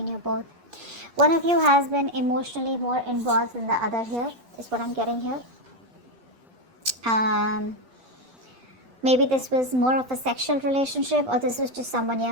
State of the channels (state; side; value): late; left; 8.4 ms